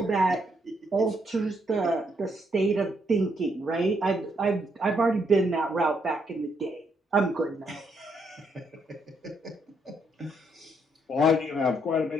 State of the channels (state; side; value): normal; both; correlation 0.74